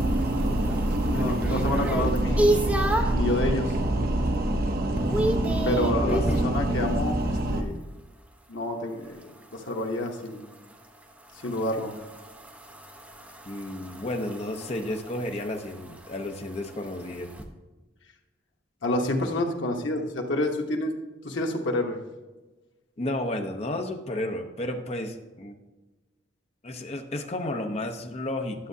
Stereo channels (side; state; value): both; normal; correlation 0.61